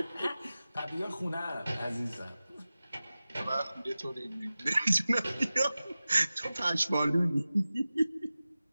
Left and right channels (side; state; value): both; inverted; correlation -0.96